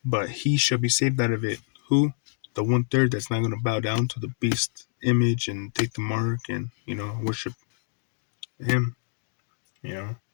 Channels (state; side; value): silent; right; digital silence